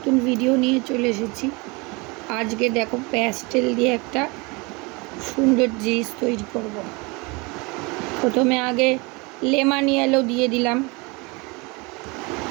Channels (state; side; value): quieter; left; 27.3 dB